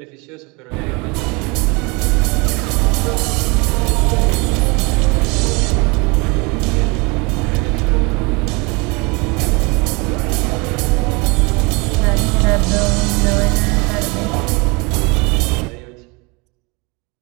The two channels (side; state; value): left; quieter; 28.2 dB